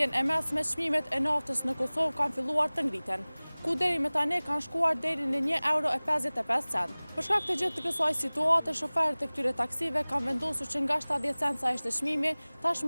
e mesme, çmimet e naftës në Kosovë kanë filluar të ngriten, ku deri më tani kanë shkuar deri në €1.55. Për shkak të gjithë të kësaj situate, shoferët e këtyre taksive kanë vendosur që nga 70 cent sa ishte çmimi,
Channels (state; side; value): inverted; both; correlation -1.00